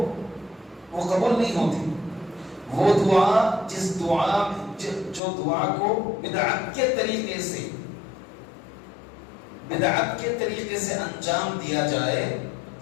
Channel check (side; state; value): right; drops out; at 5.2 s